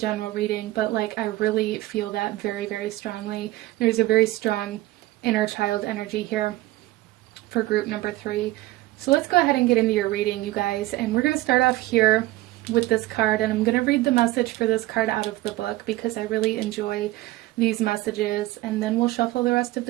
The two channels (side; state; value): left; quieter; 17.6 dB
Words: reading, but like I really feel that very, very strongly. There's a very strong inner child energy here for group number 3. So let's go ahead and get into your reading, you guys, and we're going to start off here with this card, and I'm going to read the message for this card out of the book because I really enjoy these messages, and then we'll shuffle the rest of